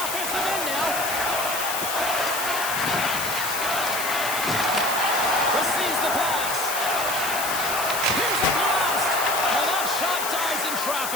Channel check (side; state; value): left; noise; hiss, 4 dB below the sound